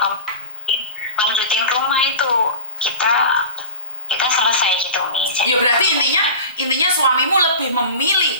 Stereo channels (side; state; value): both; inverted; correlation -0.32